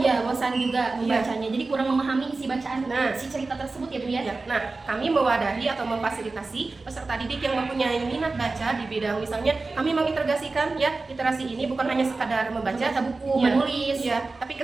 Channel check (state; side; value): quieter; left; 3.7 dB